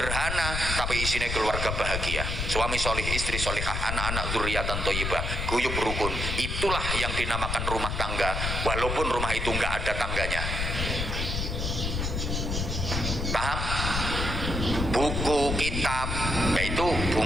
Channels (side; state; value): left; noise; rumble, 2 dB below the sound